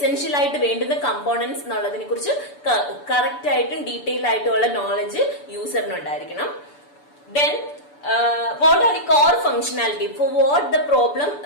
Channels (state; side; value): late; right; 6.9 ms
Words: ആയിട്ട് വേണ്ടുന്ന കമ്പോണൻസ് എന്നുള്ളതിനെ കുറിച്ച് കറക്റ്റ് ആയിട്ടും ഡീറ്റെയിൽ ആയിട്ടുള്ള നോളജ് യൂസറിന് ഉണ്ടായിരിക്കണം. Then what are the core functionality for what the problem